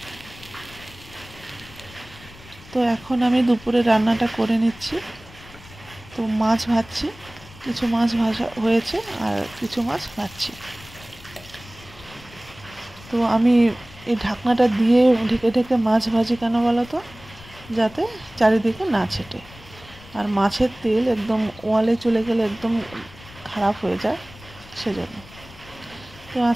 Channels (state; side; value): noise; left; rumble, 20 dB below the sound